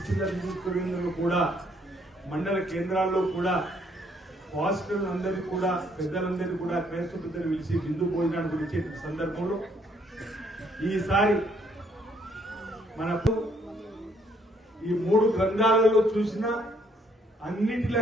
నియోజకవర్గ కేంద్రంలో కూడా, మండల కేంద్రాల్లో కూడా పాస్టర్లందరినీ కూడా, పెద్దలందరినీ కూడా, క్రైస్తవ పెద్దలు పిలిచి విందు భోజనానికి ఇచ్చే సందర్భంలో ఈసారి మనకు ఈ 3 గ్రంథాలలో చూసిన అన్నింటి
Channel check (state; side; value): normal; both; correlation 0.68